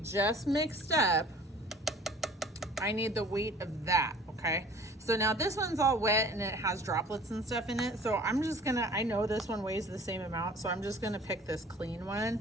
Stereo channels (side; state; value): both; normal; correlation 0.48